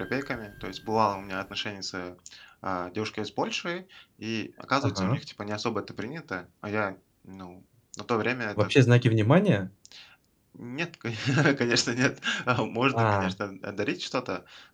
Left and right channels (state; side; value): identical; both; correlation 1.00